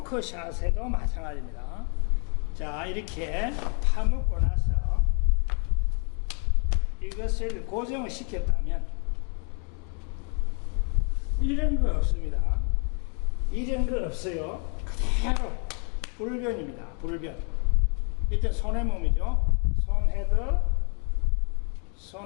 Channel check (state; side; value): quieter; right; 39.3 dB